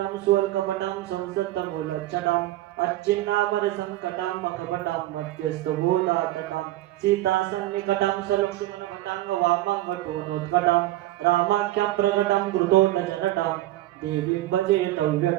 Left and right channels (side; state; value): left; quieter; 15.9 dB